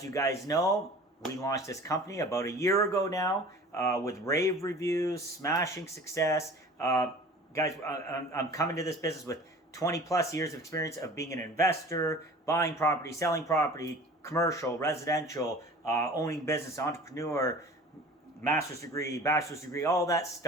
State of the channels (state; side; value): normal; both; correlation 0.43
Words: you guys know, we launched this company about a year ago now, with rave reviews, smashing success. Guys, I'm coming to this business with 20 plus years of experience of being an investor, buying property, selling property, commercial, residential, owning business, entrepreneur, master's degree, bachelor's degree, all that